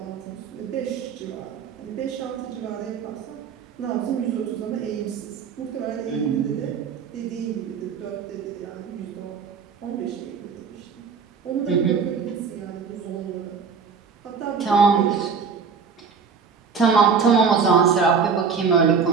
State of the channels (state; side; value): quieter; left; 5.9 dB